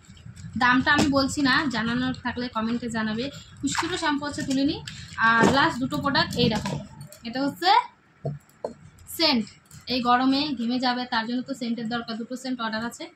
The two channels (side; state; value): both; identical; correlation 1.00